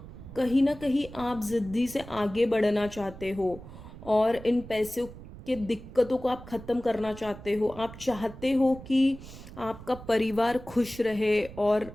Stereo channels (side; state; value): right; noise; rumble, 15 dB below the sound